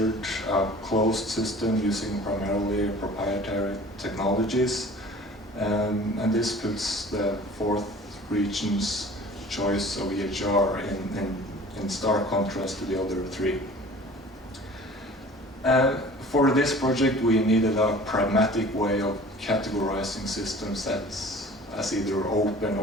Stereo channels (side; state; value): both; normal; correlation 0.45